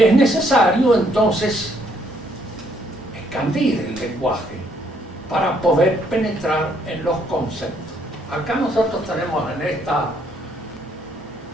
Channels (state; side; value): normal; both; correlation 0.69